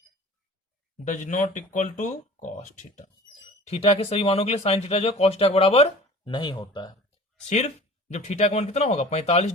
does not equal to cos theta. Theta के सभी मानों के लिए साइन थीटा जो है कॉस थीटा के बराबर नहीं होता है। सिर्फ जब थीटा का मान कितना होगा 45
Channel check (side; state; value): both; normal; correlation 0.42